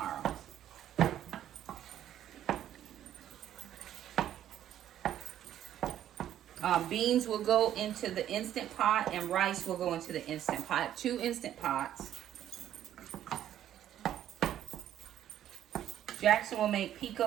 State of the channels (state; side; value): quieter; left; 11.3 dB